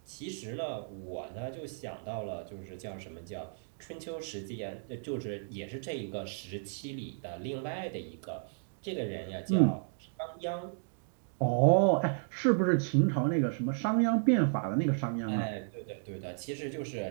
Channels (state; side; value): silent; left; digital silence